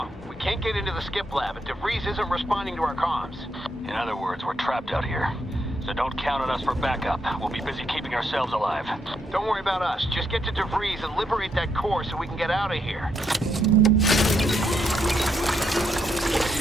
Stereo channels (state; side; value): normal; both; correlation 0.77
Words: We can't get into the skip lab, and DeVries isn't responding to our comms. In other words, we're trapped out here. So don't count on us for backup. We'll be busy keeping ourselves alive. Don't worry about us. Just get to DeVries and liberate that core so we can get out of here.